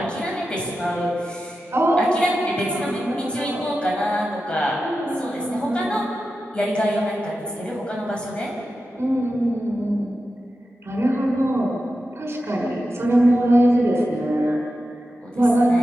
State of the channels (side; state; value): both; normal; correlation 0.91